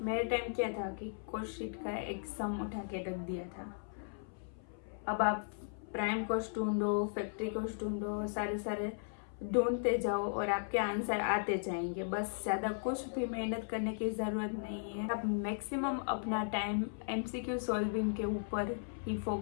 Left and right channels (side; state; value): right; silent; 53 dB below the other